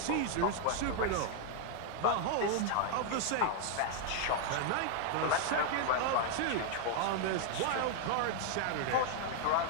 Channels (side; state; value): both; different; correlation 0.00